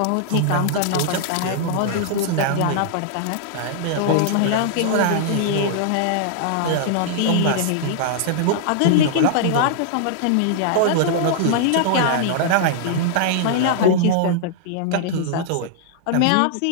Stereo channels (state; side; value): different; both; correlation -0.01